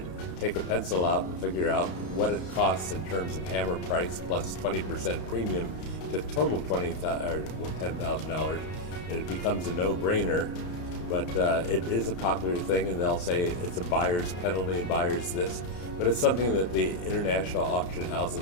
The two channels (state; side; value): late; right; 32 ms